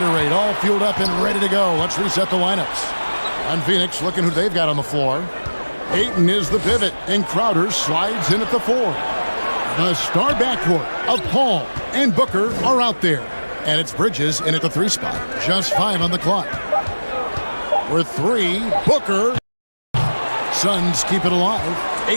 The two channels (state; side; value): inverted; both; correlation -1.00